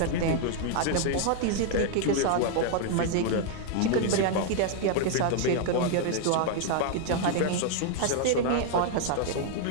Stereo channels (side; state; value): both; different; correlation 0.00